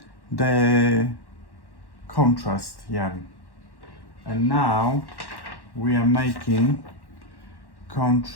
the contrast yarn, and now we are making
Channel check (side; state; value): right; late; 1.1 ms